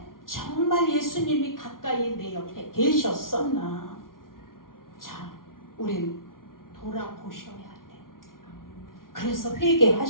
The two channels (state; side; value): late; right; 0.91 ms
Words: 정말 예수님이 가까이 내 옆에 계셨었나? 자, 우린 돌아보셔야 돼. 그래서